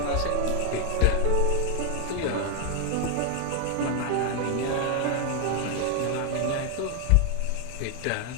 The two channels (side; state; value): both; different; correlation 0.01